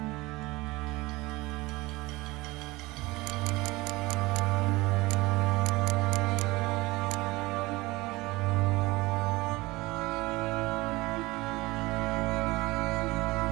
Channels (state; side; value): quieter; left; 21.3 dB